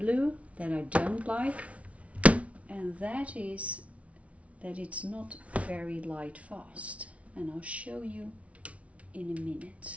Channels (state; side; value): late; left; 0.064 ms